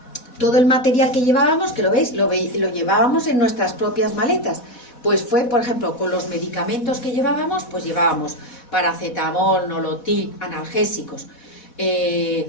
todo el material que llevábamos, que lo veis, lo llevábamos en nuestras propias maletas. Pues fue, por ejemplo, con los medicamentos que llevábamos, pues llevábamos paracetamol, nolotil, analgésicos,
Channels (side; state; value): right; late; 4.1 ms